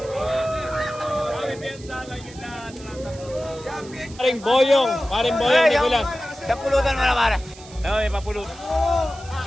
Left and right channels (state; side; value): noise; right; hiss, 20 dB below the sound